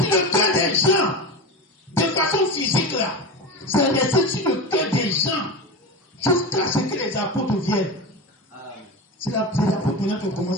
le cœur des gens. De façon physique là. C'est resté sur le cœur des gens. Jusqu'à ce que les apôtres viennent. C'est les apôtres maintenant qui ont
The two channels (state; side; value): normal; both; correlation 0.24